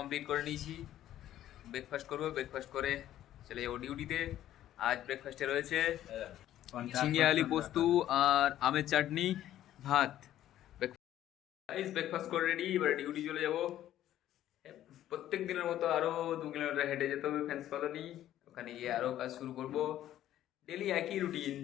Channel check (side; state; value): right; quieter; 12.5 dB